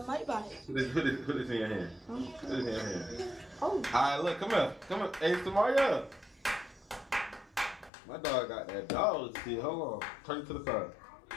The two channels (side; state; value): right; drops out; at 7.9 s